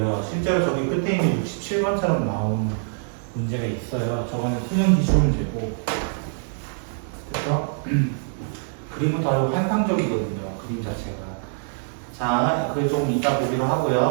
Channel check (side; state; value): left; silent; digital silence